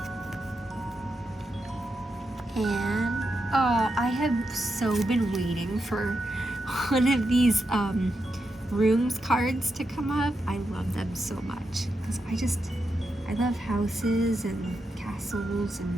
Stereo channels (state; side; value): normal; both; correlation 0.86